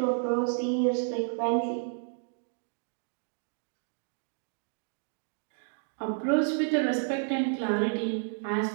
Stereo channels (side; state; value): left; silent; digital silence